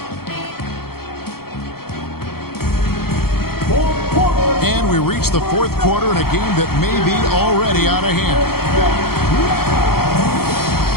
And we reach the fourth quarter in a game that may be already out of hand.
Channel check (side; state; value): right; late; 0.94 ms